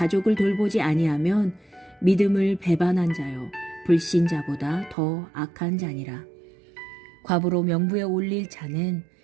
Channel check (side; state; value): left; drops out; at 5.0 s